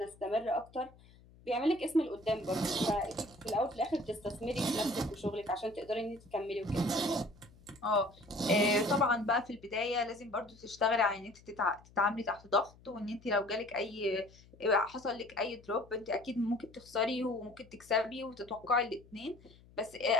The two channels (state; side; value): noise; left; hum, 25 dB below the sound